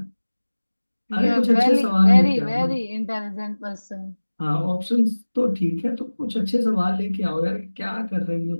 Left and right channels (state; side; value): inverted; both; correlation -1.00